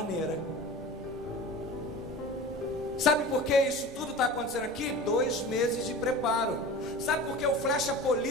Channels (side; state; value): both; normal; correlation 0.35